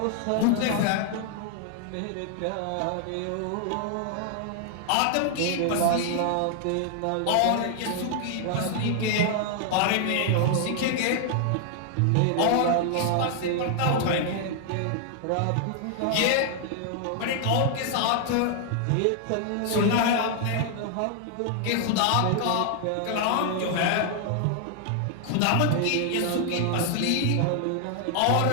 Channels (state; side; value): different; both; correlation 0.00